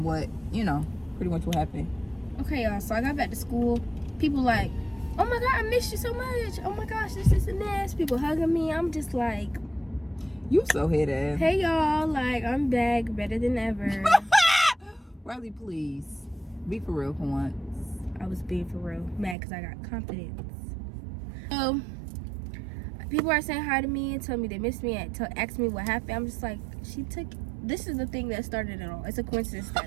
what, pretty much what happened. Okay, y'all. So I got back to school. People like, oh my God, I missed you so much. Oh my gosh, this and this. People hugging me. I'm just like, you so head ass. hey y'all, like I'm back, better than ever. Riley, please be for real for once. I was being for real, mad because I got confidence. So people are saying hi to me and tell me they miss me and ask me what happened. I'm just like, this is the thing that started it all. It's a coincidence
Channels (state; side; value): drops out; left; at 19.4 s